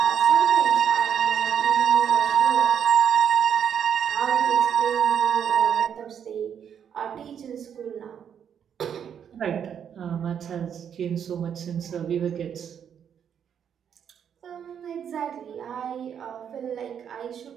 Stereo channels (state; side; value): quieter; left; 8.3 dB